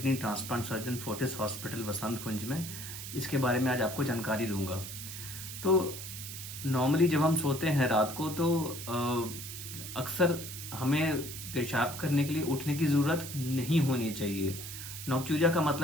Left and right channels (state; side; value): noise; right; hiss, 9 dB below the sound